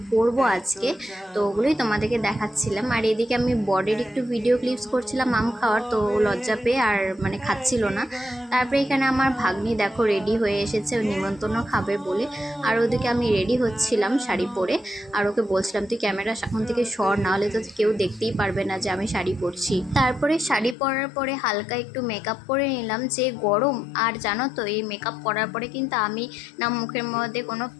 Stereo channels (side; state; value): right; drops out; at 20.8 s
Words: পরবো আজকে, তো ওগুলোই তোমাদেরকে দেখাচ্ছিলাম। আর এদিকে আমি বরের একটু ভিডিও ক্লিপস করছিলাম আম খাওয়ার, তো লজ্জা পেয়ে আর মানে খাচ্ছিল না। তারপরে এখানে আমার ভাগ্নি দেখো রেডি হয়ে এসেছে, ও নিমন্ত্রণ খাবে বলে। আর ওদিকে আমি রেডি হচ্ছিলাম শাড়ি পরে, আর ওকে বলছিলাম তুই ক্যামেরা সামনে থেকে সর, নাহলে তো কেউ দেখতেই পারবে না যে আমি শাড়ি পরছি। তারপরে শাড়ি পরার পরে হালকা একটু মেকআপ করে নিলাম, যে গরম। আর জানো তো এই মেকআপ করার পরে কিন্তু আমি না মুখের মধ্যে কোনো